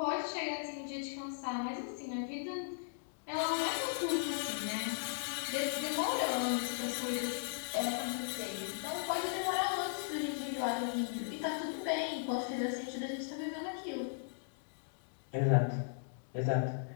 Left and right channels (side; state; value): right; silent; digital silence